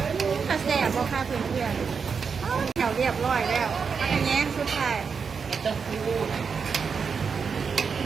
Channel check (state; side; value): quieter; left; 5.8 dB